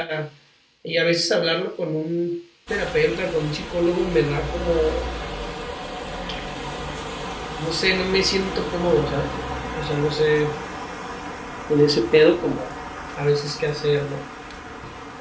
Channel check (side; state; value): both; identical; correlation 1.00